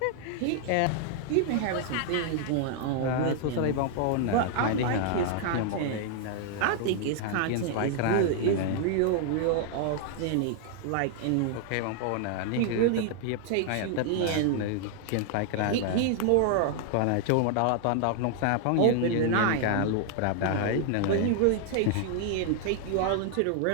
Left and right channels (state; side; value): different; both; correlation 0.00